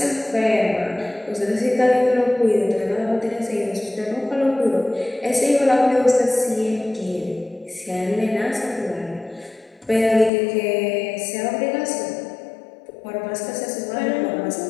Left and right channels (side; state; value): right; drops out; at 10.3 s